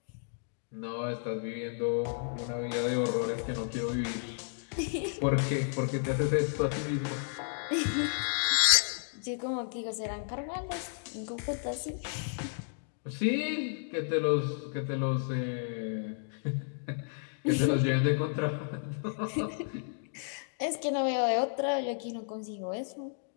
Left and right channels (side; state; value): right; silent; digital silence